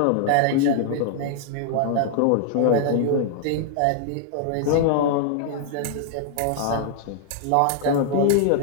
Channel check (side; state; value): both; different; correlation -0.01